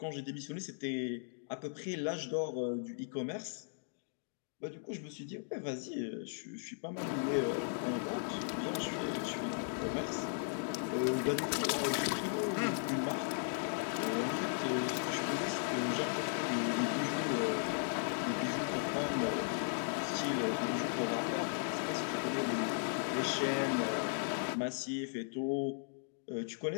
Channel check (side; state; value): right; silent; digital silence